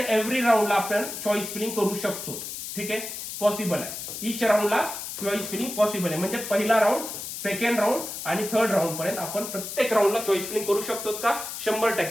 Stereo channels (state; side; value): noise; left; hiss, 7 dB below the sound